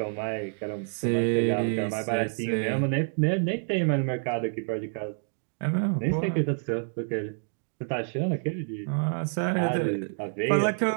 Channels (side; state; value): left; silent; 59 dB below the other